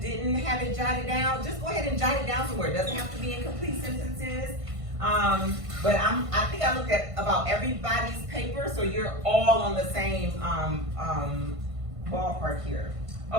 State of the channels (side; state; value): left; late; 1.5 ms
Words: have it jotted down, just go ahead and jot it down somewhere. It doesn't have to be in complete sentences. But I think I looked at about everybody's paper, so you're all on the same ballpark here.